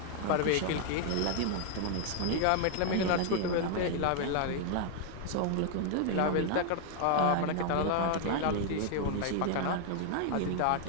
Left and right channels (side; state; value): both; different; correlation 0.00